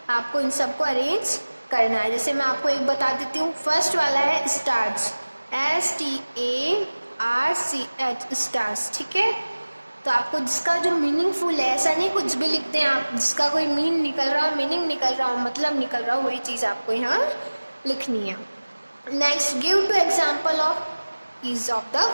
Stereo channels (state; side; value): inverted; both; correlation -1.00